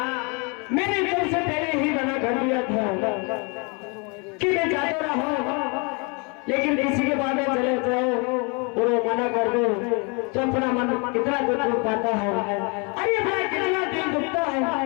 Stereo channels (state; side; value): quieter; right; 32.3 dB